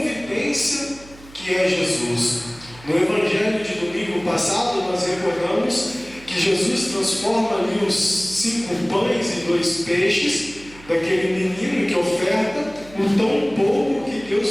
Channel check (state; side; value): noise; right; hum, 21 dB below the sound